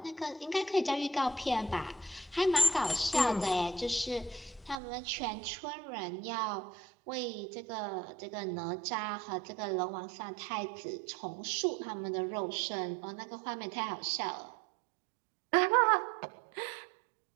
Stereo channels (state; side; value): drops out; left; at 4.8 s